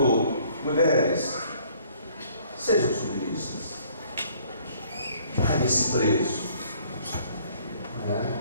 mulheres, sejam submissas. Pague esse preço.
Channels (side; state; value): both; inverted; correlation -0.60